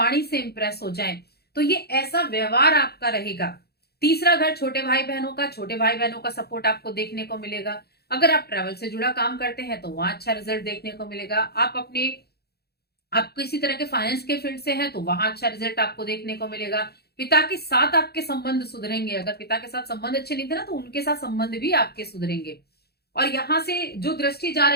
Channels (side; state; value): right; late; 0.46 ms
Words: से इंप्रेस हो जाएं, तो ये ऐसा व्यवहार आपका रहेगा। तीसरा घर छोटे भाई बहनों का, छोटे भाई बहनों का सपोर्ट आपको देखने को मिलेगा। अगर आप ट्रैवल से जुड़ा काम करते हैं तो वहां अच्छा रिजल्ट देखने को मिलेगा। आप किसी तरह के फाइनेंस के फील्ड से हैं तो वहां अच्छा रिजल्ट आपको देखने को मिलेगा। पिता के साथ आपके संबंध सुधरेंगे। अगर पिता के साथ संबंध अच्छे नहीं थे ना, तो उनके साथ संबंध भी आपके सुधरेंगे। और यहां से जो दृष्टि जा